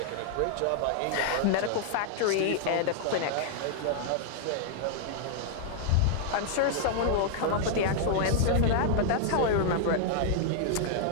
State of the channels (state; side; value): different; both; correlation -0.01